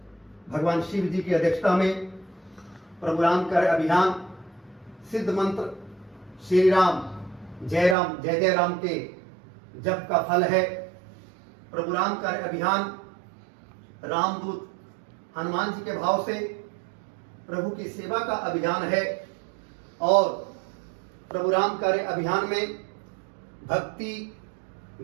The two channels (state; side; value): drops out; left; at 8.0 s